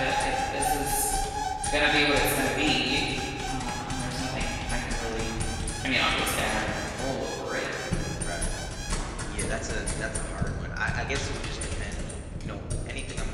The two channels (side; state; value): both; identical; correlation 1.00